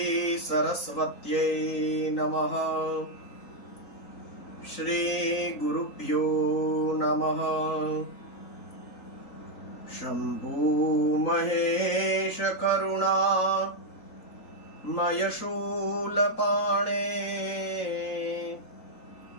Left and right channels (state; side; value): late; right; 3.9 ms